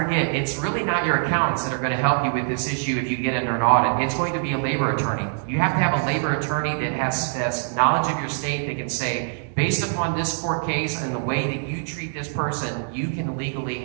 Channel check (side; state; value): left; silent; 63 dB below the other